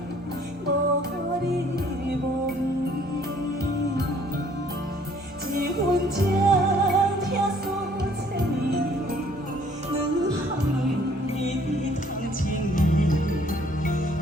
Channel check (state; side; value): normal; both; correlation 0.60